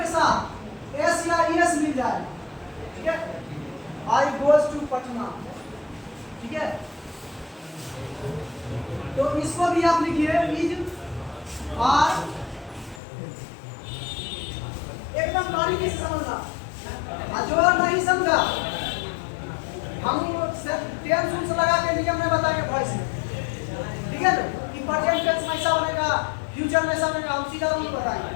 साथ एस या एस मिल जाए। ठीक है, आई गोज टू पटना। ठीक है, तो इसको भी आप लिखिए इज आर। एकदम बारीकी से समझना, जो नहीं समझा हम टेंस उन्स लगा के नियम में बताएंगे वॉइस में। ठीक है, कि प्रेजेंट टेंस में ऐसा बनेगा, फ्यूचर में ऐसा बनेगा, हम सीधा रूल बताएंगे,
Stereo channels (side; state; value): right; drops out; at 13.0 s